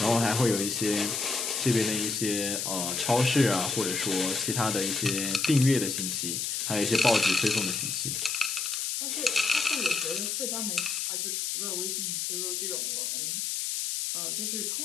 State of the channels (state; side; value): noise; left; hiss, 1 dB below the sound